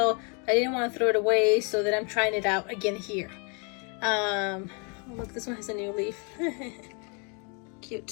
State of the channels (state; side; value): quieter; right; 35.2 dB